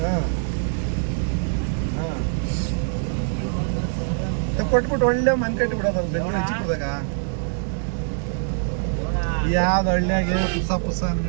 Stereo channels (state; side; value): silent; left; 63 dB below the other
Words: ಕೊಟ್ಬಿಟ್ಟು ಒಳ್ಳೆ ಮನೆ ಕಟ್ಟಿ ಬಿಡೋದಲ್ಲ ಬೆಂಗಳೂರು ಹೆಚ್ಚಿಬಿಡ್ದಾಗ. ಯಾವ್ದು ಹಳ್ಳಿಯಾಗೆ ಪುಸ